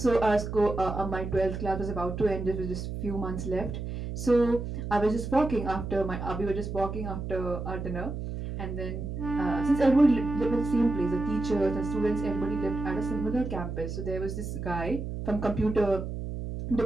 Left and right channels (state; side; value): noise; right; hum, 6 dB below the sound